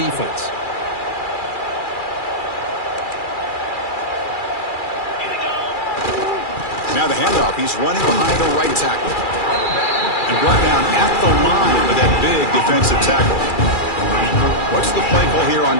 Now the handoff. He's running behind the right tackle. And brought down at the line with that big defensive tackle. What's the play call here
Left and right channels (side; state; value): right; late; 2.4 ms